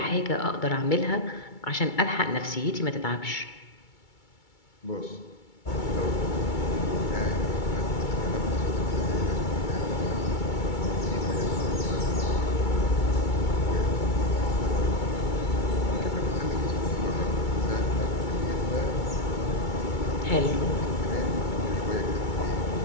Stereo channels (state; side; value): late; right; 2.3 ms